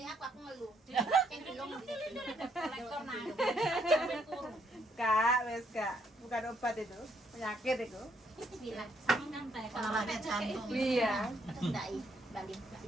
aku ngeluh. Sing belum Kolektor nah. Sampai kurung. Kak, wes Kak. Bukan obat itu. Penyakit itu. bilang Sama kan teh Kalau ada jantung. Iya. ndai balik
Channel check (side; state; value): both; normal; correlation 0.72